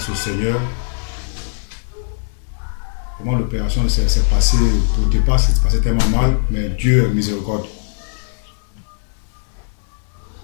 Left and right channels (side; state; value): right; silent; digital silence